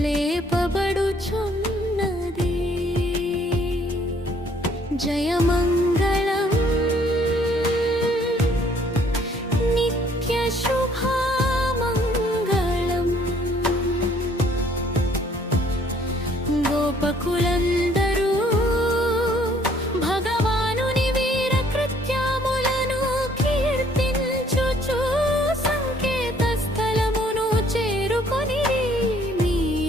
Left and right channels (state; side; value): normal; both; correlation 0.62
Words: లేపబడుచున్నది. జయమంగళం నిత్య శుభమంగళం గోపకులందరూ భగవానుని వీర కృత్యములను కీర్తించుచు సంకేత స్థలమును చేరుకొని